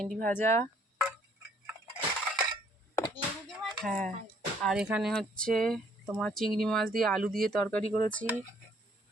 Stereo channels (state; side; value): normal; both; correlation 0.64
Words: ভাজা, হ্যাঁ। আর এখানে হচ্ছে তোমার চিংড়ি মাছ দিয়ে আলু দিয়ে তরকারি করেছি।